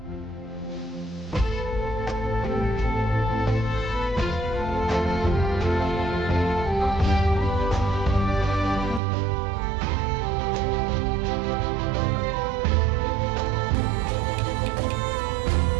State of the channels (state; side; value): drops out; left; at 9.0 s